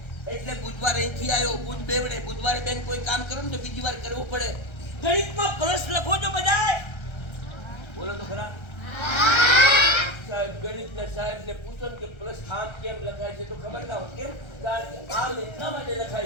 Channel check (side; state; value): right; late; 1.3 ms